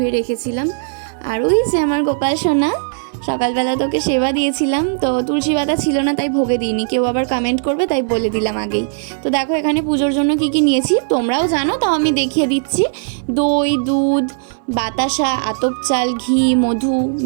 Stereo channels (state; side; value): silent; left; 63 dB below the other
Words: রেখেছিলাম। আর ওই যে আমার গোপাল সোনা, সকালবেলা তোকে সেবা দিয়েছিলাম, তো তুলসী পাতা ছিল না তাই ভোগে দিইনি, কেউ আবার কমেন্ট করবে তাই বলে দিলাম আগেই। তো দেখো এখানে পুজোর জন্য কি কি নিয়েছি তোমরাও জানো, তাও আমি দেখিয়ে দিচ্ছি। দই, দুধ, বাতাসা, আতপ চাল, ঘি, মধু,